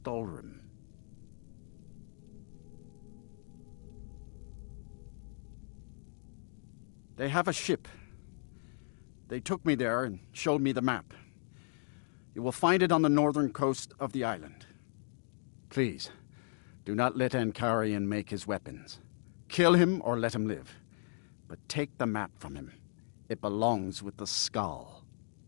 They have a ship. They took me there and showed me the map. You will find it on the northern coast of the island. Please, do not let Ankarian make his weapons. Kill him or let him live. But take the map from him. It belongs with the Skull.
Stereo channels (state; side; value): silent; right; 54 dB below the other